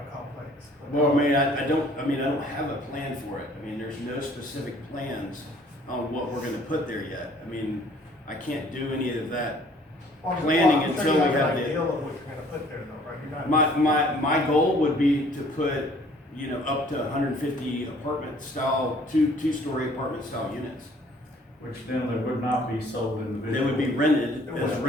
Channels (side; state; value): both; normal; correlation 0.57